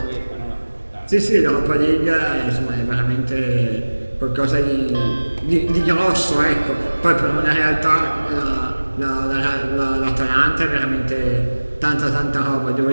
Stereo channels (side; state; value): both; inverted; correlation -1.00